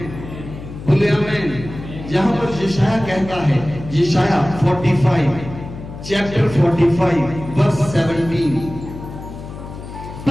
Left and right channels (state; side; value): noise; left; hum, 12 dB below the sound